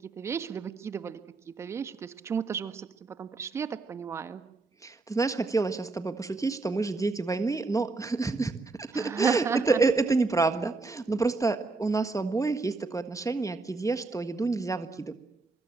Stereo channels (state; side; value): quieter; left; 3.7 dB